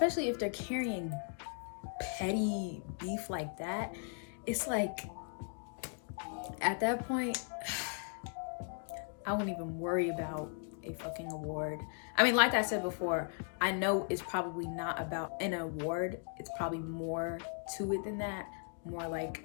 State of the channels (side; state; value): right; silent; 53 dB below the other